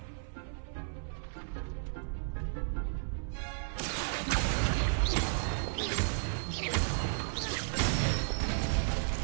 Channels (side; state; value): left; silent; 55 dB below the other